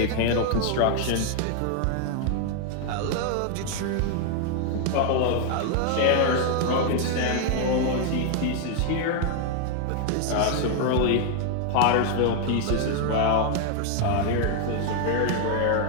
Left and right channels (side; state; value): both; different; correlation 0.00